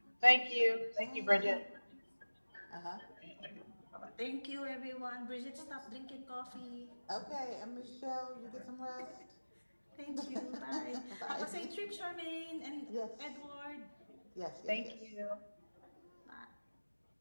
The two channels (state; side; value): inverted; both; correlation -1.00